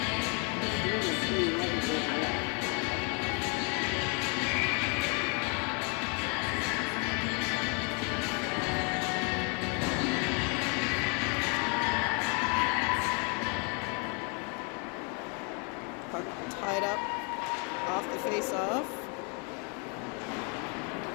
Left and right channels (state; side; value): quieter; right; 35.9 dB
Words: Puck tied up off the face-off.